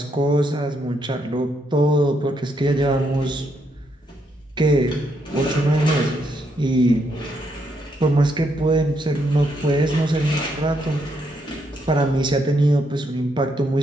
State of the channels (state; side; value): normal; both; correlation 0.76